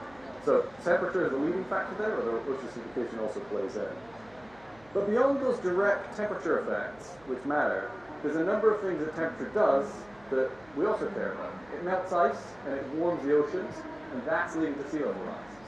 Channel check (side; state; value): right; noise; hum, 27 dB below the sound